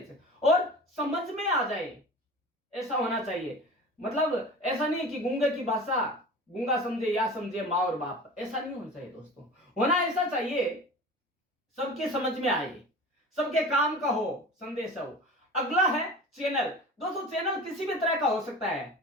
और समझ में आ जाए ऐसा होना चाहिए। मतलब ऐसा नहीं कि गूंगे की भाषा गूंगा समझे या समझे माँ और बाप, ऐसा नहीं होना चाहिए दोस्तों। होना ऐसा चाहिए सबके समझ में आए, सबके काम का हो, संदेश हो। अगला है चैनल। दोस्तों चैनल किसी भी तरह का हो सकता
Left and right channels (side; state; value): both; normal; correlation 0.36